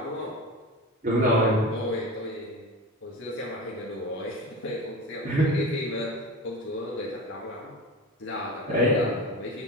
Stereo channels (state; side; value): normal; both; correlation 0.30